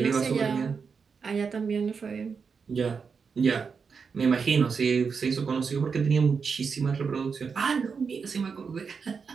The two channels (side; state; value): left; quieter; 5.6 dB